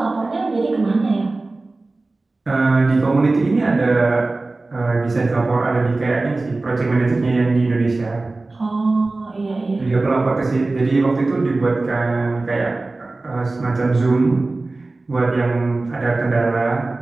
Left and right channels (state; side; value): quieter; left; 3.3 dB